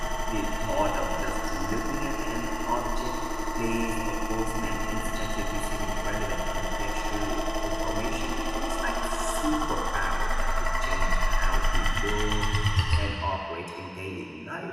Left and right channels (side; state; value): both; identical; correlation 1.00